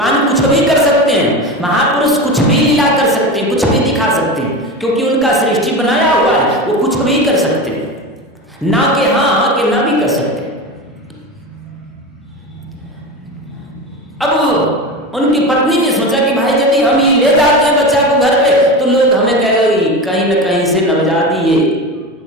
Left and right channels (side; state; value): both; normal; correlation 0.25